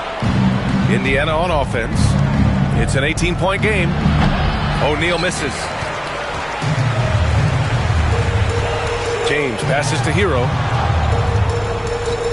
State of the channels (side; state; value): both; identical; correlation 1.00